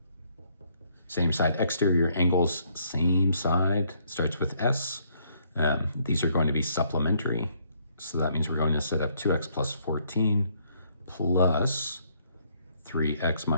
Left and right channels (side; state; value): both; inverted; correlation -0.69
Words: Same side exterior angles, same side, starts with S. These are going to be supplementary. So that means we're going to set up 2x plus 14 plus 3x